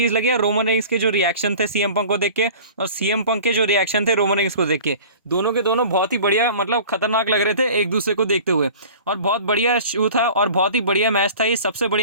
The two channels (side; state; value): both; inverted; correlation -0.42